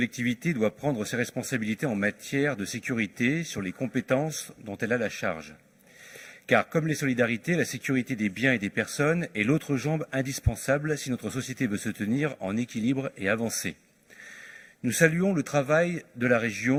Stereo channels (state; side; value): identical; both; correlation 1.00